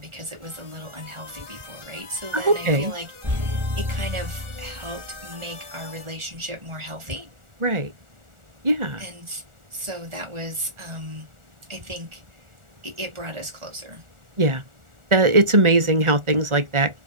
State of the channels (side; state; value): left; late; 1.4 ms